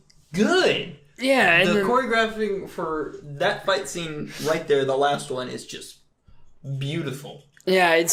good. Yeah. And the choreographing for that fight scene right there, the last one, is just beautiful. Yeah, it's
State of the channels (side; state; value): both; identical; correlation 1.00